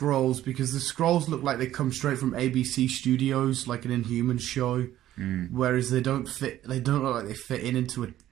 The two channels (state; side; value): quieter; left; 13.2 dB